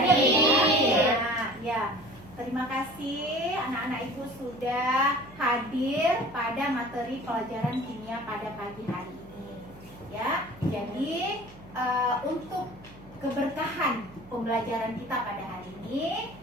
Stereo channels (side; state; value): right; noise; hum, 22 dB below the sound